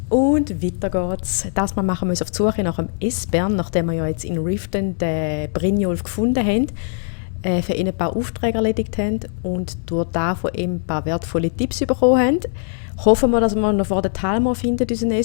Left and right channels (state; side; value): silent; right; 65 dB below the other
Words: Und weiter geht's. Das Mal machen wir uns auf die Suche nach dem Esbern, nachdem wir ja jetzt in Riften den Brynjolf gefunden haben, für ihn ein paar Aufträge erledigt haben und durch das von ihm ein paar wertvolle Tipps bekommen haben. Hoffen wir, dass wir noch vor der Talmor finden, unseren